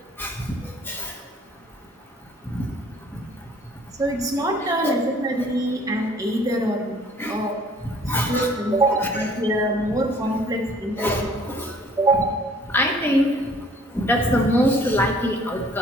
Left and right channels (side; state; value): both; normal; correlation 0.56